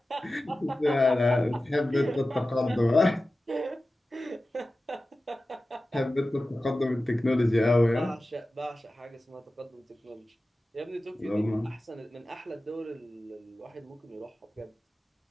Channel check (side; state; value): both; normal; correlation 0.95